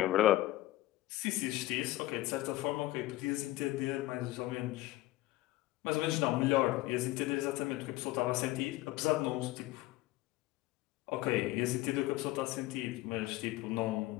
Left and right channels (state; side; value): quieter; right; 17.3 dB